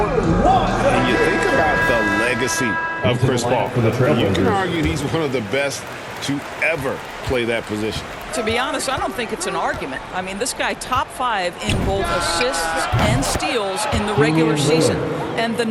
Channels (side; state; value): both; identical; correlation 1.00